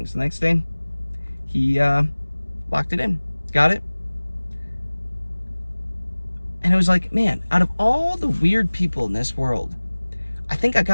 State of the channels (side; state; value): both; inverted; correlation -1.00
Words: The next day he locked it in, got it. And it was like, man, out of all the weird people in this world, I think I